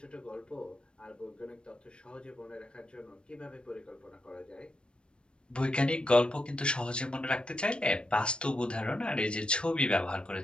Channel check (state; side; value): late; right; 0.055 ms